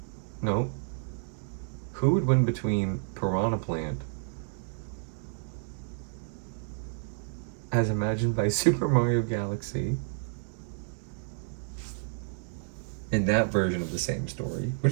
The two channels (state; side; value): silent; left; digital silence